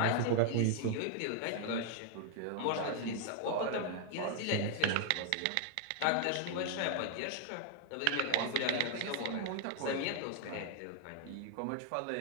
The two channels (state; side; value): different; both; correlation 0.00